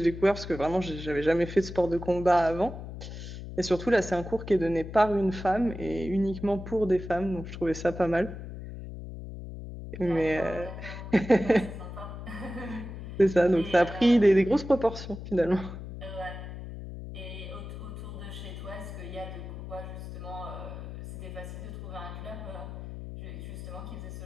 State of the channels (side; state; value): left; noise; hum, 10 dB below the sound